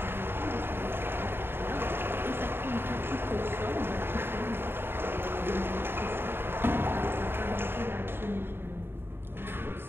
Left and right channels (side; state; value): left; late; 0.11 ms